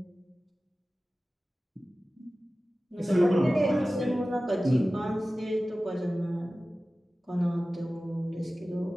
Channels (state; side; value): normal; both; correlation 0.96